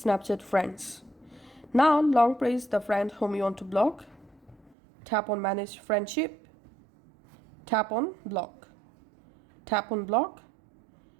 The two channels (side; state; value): left; drops out; at 4.8 s